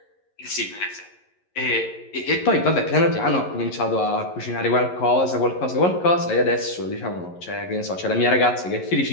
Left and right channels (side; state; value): right; late; 11 ms